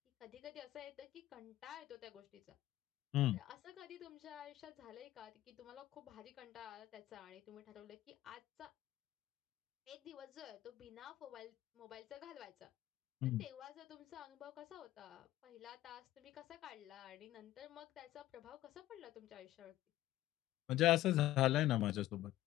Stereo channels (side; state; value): right; quieter; 15.0 dB